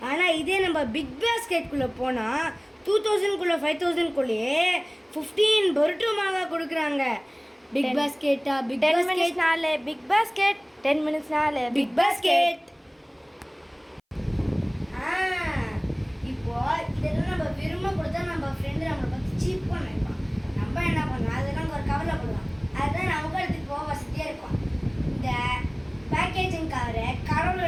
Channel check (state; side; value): identical; both; correlation 1.00